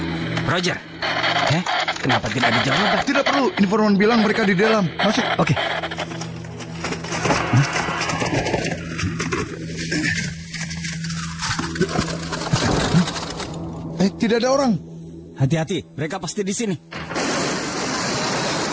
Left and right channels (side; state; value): both; identical; correlation 1.00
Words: Roger. Kenapa tidak ada jawaban? Tidak perlu. Informan bilang mereka di dalam. Masuk. Oke. Tidak ada orang. Hati-hati, mereka pasti di sini.